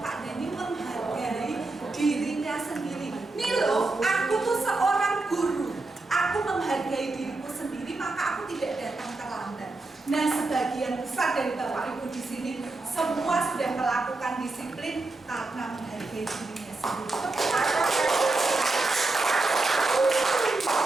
Dani menghargai dirinya sendiri. Nih loh, aku tuh seorang guru. Aku menghargai diriku sendiri, maka aku tidak datang terlambat. Nah, sebagian besar dari Bapak Ibu di sini semua sudah melakukan disiplin karena menghargai dirinya sendiri.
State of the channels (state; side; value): quieter; left; 3.3 dB